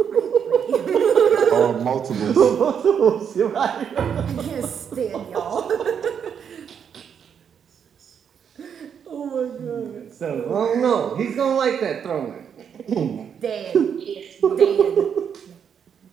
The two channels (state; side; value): quieter; left; 7.7 dB